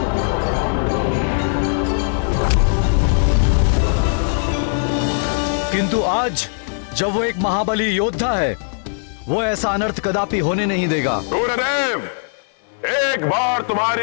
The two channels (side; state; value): right; silent; 58 dB below the other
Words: किंतु आज जब वो एक महाबली योद्धा है, वो ऐसा अनर्थ कदापि होने नहीं देगा। सूर्यदेव, एक बार